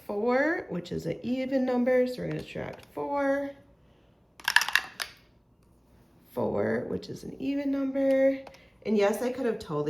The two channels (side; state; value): both; identical; correlation 1.00